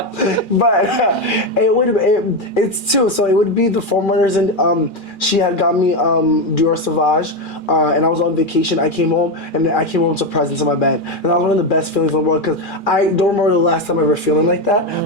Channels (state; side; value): late; right; 2.4 ms